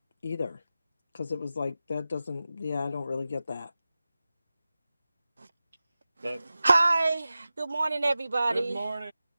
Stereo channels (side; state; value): both; inverted; correlation -0.95